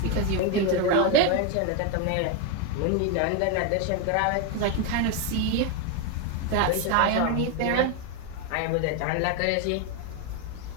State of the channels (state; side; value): different; both; correlation 0.01